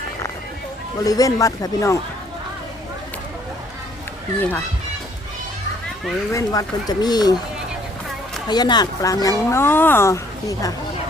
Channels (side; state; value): both; normal; correlation 0.63